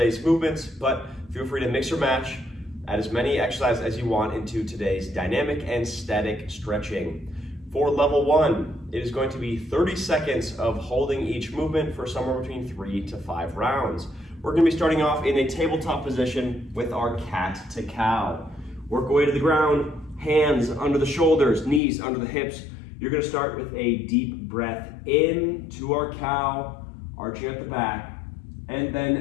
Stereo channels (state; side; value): drops out; right; at 21.8 s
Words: movements, but feel free to mix or match, add as many exercises as you want into today's dynamic and static stretching. For level 1, it is going to be 30 seconds of holding each movement for somewhere between 3 to 5 rounds. We're going to be starting off in a tabletop position with our cat to cow. Work away to the ground, hands under the shoulders, knees under the hips. You're going to start with a deep breath in to our cow, arching at the back, and